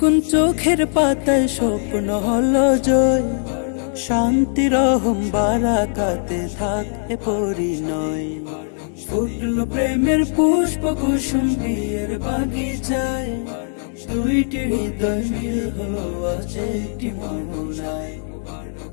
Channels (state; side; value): silent; right; digital silence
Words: চোখের পাতায়, স্বপ্ন হলো জয়, শান্তি রহম বারাকাতে থাকে পরিণয়। ফুটল প্রেমের পুষ্প কুসুম বিয়ের বাগিচায়, দুইটি হৃদয় মিল হলো আজ একটি মোহনায়।